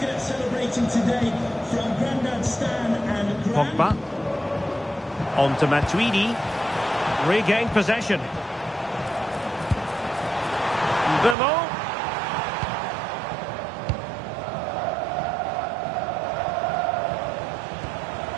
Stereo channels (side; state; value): left; drops out; at 11.4 s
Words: celebrating today from Grandad Stan and Pogba. On to Matuidi. Regained possession. Bemo.